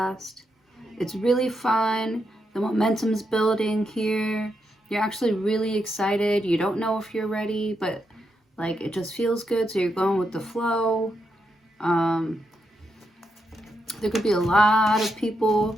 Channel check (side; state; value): both; normal; correlation 0.83